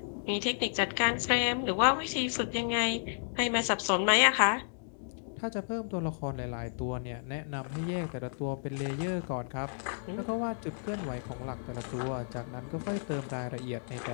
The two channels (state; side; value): silent; right; digital silence